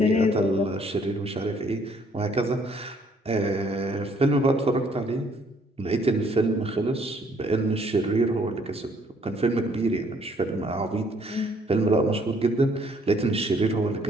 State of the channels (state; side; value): normal; both; correlation 0.64